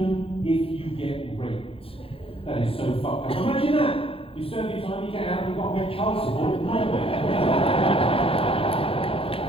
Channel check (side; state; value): right; late; 0.27 ms